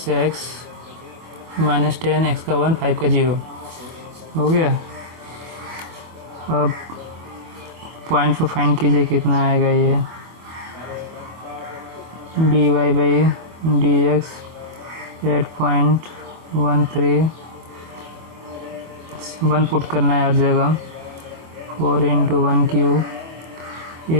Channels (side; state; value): left; late; 25 ms